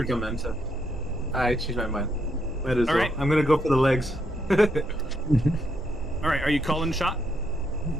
Dementa. I changed my mind. Might as All well. right. I'm gonna go for the legs. All right, are you calling the shot?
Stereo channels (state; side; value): normal; both; correlation 0.77